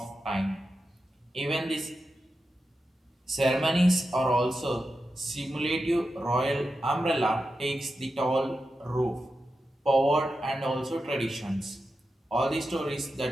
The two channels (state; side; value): normal; both; correlation 0.90